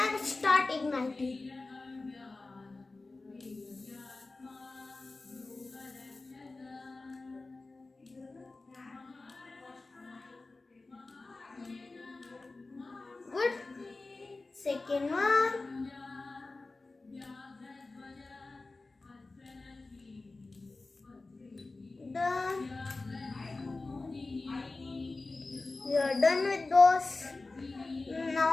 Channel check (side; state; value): right; quieter; 3.4 dB